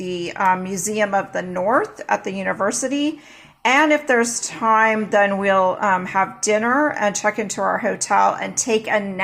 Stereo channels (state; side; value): identical; both; correlation 1.00